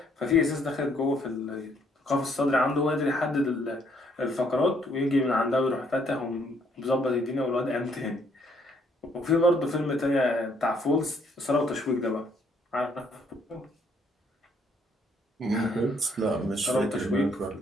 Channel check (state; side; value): normal; both; correlation 0.68